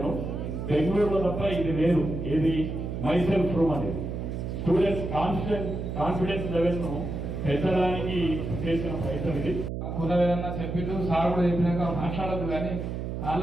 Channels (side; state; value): right; noise; hum, 5 dB below the sound